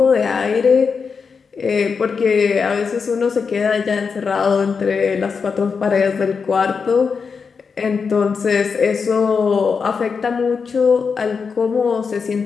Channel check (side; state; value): right; quieter; 5.5 dB